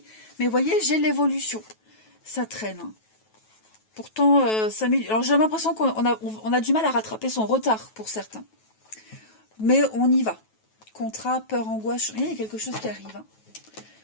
Mais vous voyez, j'ai l'évolution. Ça traîne. Hein. Pourtant, alors j'ai l'impression qu'on a du mal à rattraper son retard pour certains. Mais on y va. Contrat, peur, angoisse, il y a quelque chose qui arrive. Hein.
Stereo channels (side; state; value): right; late; 9.2 ms